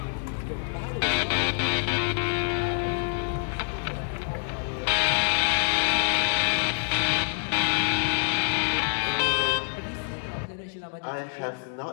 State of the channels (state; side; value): silent; right; digital silence